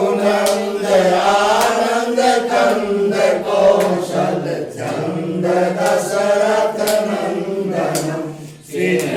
रघुनंदयानंद कंद कौशल चंद दशरथ नंदनम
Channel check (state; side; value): identical; both; correlation 1.00